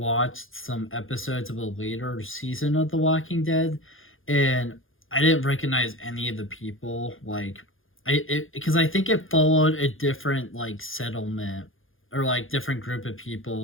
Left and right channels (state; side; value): late; right; 0.59 ms